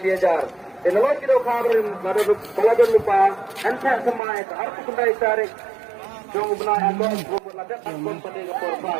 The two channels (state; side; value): drops out; left; at 4.2 s